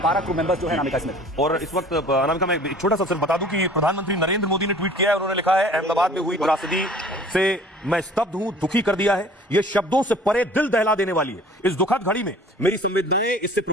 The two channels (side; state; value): both; normal; correlation 0.49